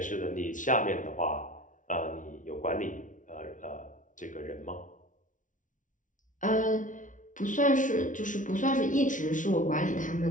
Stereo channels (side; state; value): right; late; 0.37 ms